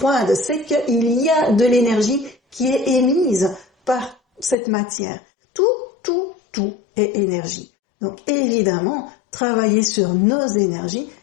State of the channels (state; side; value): drops out; right; at 4.5 s